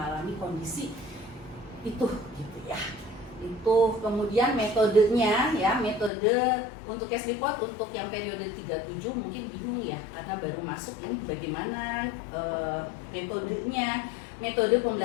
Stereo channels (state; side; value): drops out; right; at 6.1 s